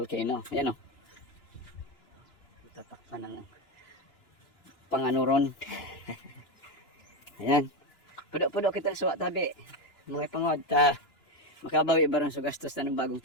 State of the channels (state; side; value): late; right; 2.9 ms